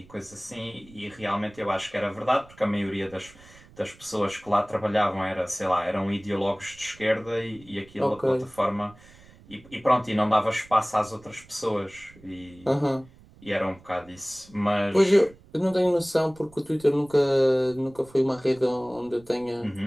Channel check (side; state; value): right; noise; rumble, 24 dB below the sound